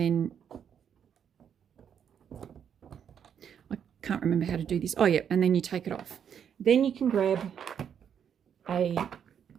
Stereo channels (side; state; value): left; quieter; 8.2 dB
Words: I can't remember how to do this. Oh yeah, and then you take it off. Then you can grab a